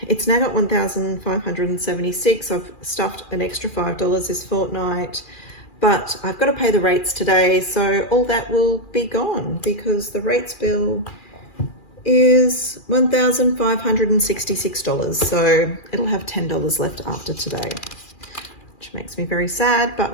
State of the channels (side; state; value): right; late; 2.4 ms